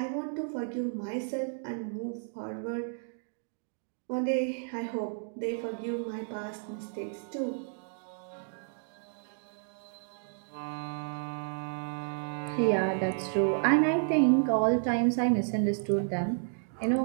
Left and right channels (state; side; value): silent; left; digital silence